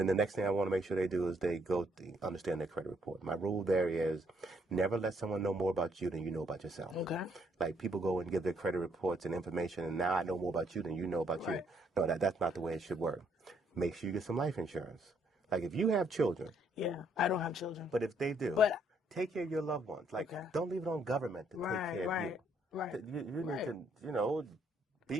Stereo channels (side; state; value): both; normal; correlation 0.70